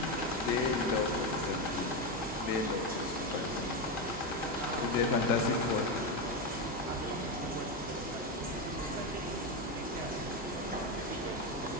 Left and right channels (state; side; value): normal; both; correlation 0.11